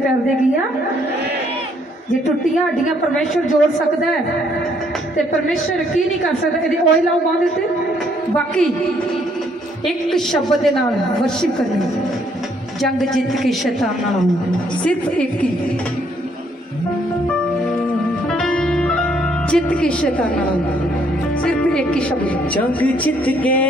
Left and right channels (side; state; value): both; normal; correlation 0.68